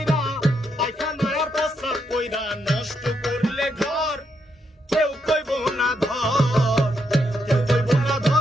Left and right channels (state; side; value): normal; both; correlation 0.79